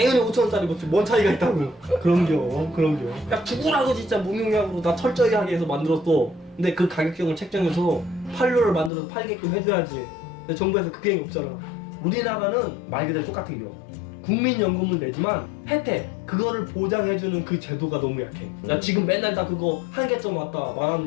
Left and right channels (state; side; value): drops out; right; at 8.9 s